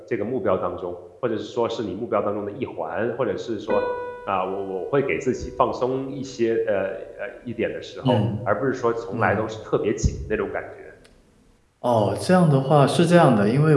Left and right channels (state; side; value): identical; both; correlation 1.00